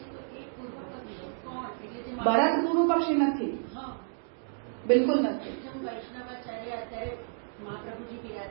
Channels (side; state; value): left; silent; digital silence